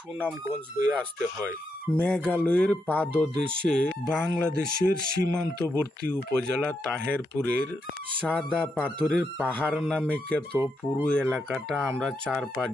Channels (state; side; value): normal; both; correlation 0.82